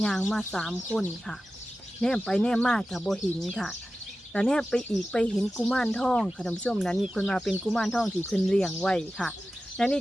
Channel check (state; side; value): normal; both; correlation 0.94